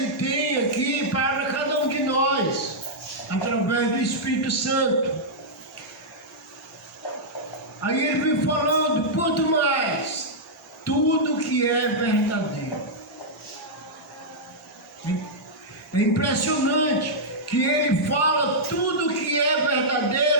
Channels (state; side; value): normal; both; correlation -0.08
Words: tem aqui para cada um de nós, através do Espírito Santo. Aí ele vem falando, quanto mais, tudo que é verdadeiro. É impressionante que ele fala tudo que é